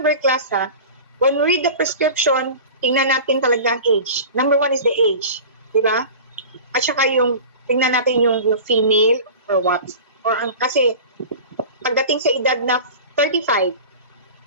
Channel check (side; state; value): both; inverted; correlation -0.36